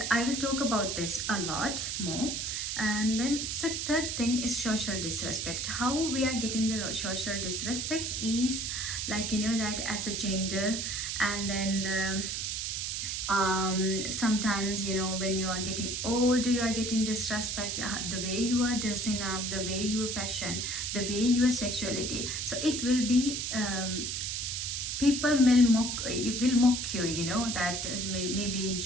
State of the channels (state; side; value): noise; right; hiss, 2 dB below the sound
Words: I will talk about this a lot more. And then the third thing is social disrespect. How we are getting the social disrespect is like that as a gender, and then sometimes when you are getting older, you are getting disrespect, the way you are dressing up, the way you fashion, the way your sexuality. So it will be people will mock you, that maybe in